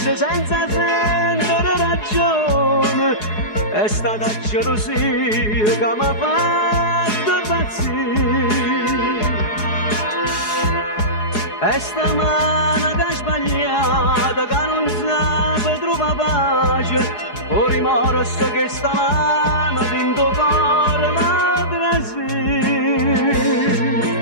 senza sentire ragione. È stata gelosia che mi ha fatto impazzire. È sta mano che ha sbagliato, che non sa trovare pace. O rimorso che sta mano dentro cuore mi trasì.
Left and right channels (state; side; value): late; right; 4.8 ms